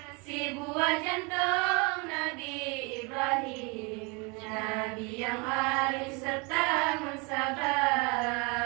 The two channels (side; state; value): left; quieter; 30.1 dB